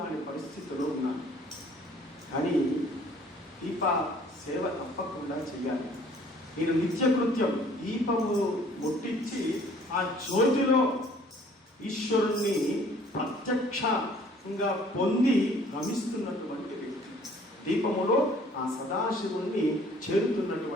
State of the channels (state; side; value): normal; both; correlation 0.56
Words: పరిస్థితిలో ఉన్నాను. కానీ దీప సేవ తప్పకుండా చేయాలి. నేను నిత్యకృత్యం దీపము ముట్టించి ఆ జ్యోతిలో ఈశ్వరుణ్ణి ప్రత్యక్షంగా పొంది రమిస్తున్నటువంటి వ్యక్తి, దీపములో ఆ సదాశివుణ్ణి